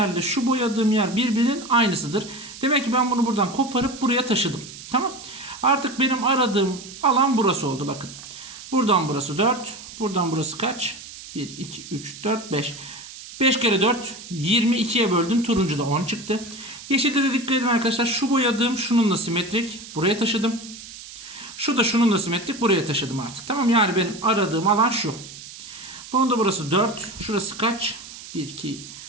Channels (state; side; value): noise; right; hiss, 14 dB below the sound